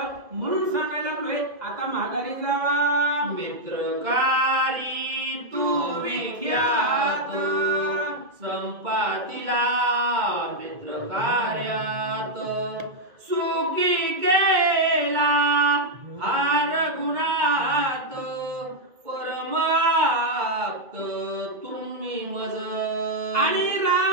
म्हणून सांगायला लागलोय आता माघारी जावा. मित्रकारी तू विख्यात संपातीला मित्र कार्यात सुखी केला हार गुणात परमाप्त तुम्ही मज. आणि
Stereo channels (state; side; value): late; left; 2.2 ms